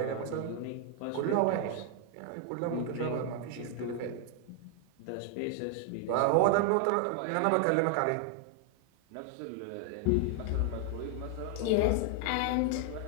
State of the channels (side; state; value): both; different; correlation 0.00